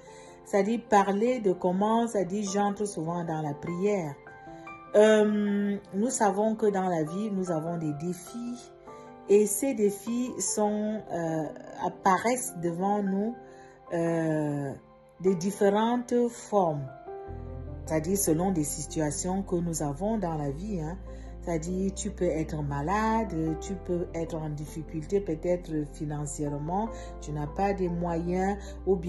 c'est-à-dire parler de comment, c'est-à-dire j'entre souvent dans la prière. Nous savons que dans la vie, nous avons des défis et ces défis apparaissent devant nous de différentes formes, c'est-à-dire selon des situations que nous avons dans la vie. C'est-à-dire, tu peux être malade, tu peux être en difficulté peut-être financièrement, tu n'as pas de moyens, ou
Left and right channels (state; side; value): identical; both; correlation 1.00